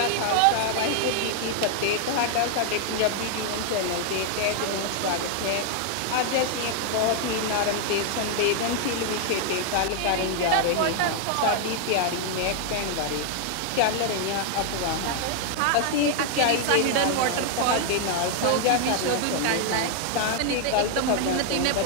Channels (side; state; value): both; different; correlation 0.00